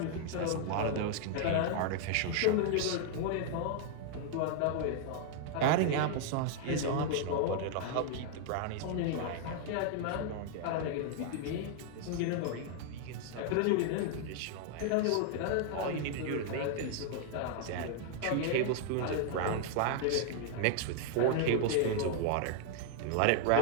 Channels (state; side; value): different; both; correlation 0.00